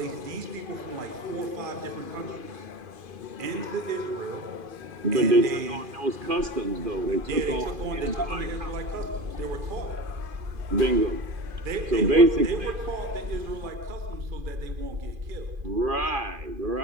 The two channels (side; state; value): left; late; 2.5 ms